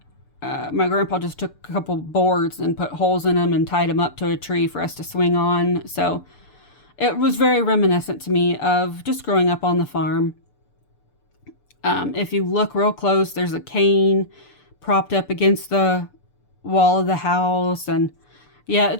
my grandpa just took a couple boards and put holes in them and tied them up to a tree for us to swing on. So it was very reminiscent to me of just growing up on the farm. If you look real close, there's a cane propped up against the wall of the house, and yeah,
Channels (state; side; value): late; right; 6.8 ms